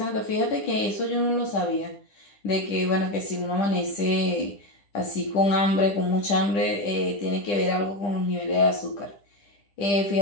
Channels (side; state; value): right; late; 10 ms